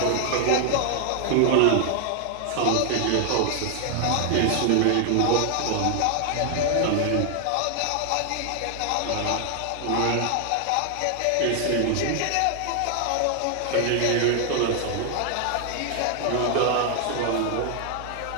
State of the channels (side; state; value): both; different; correlation 0.00